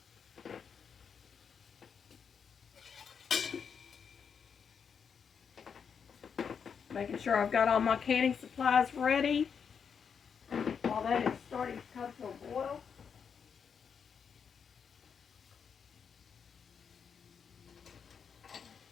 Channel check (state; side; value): quieter; right; 6.7 dB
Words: Making sure I've got all my canning supplies ready while that is starting to come to a boil.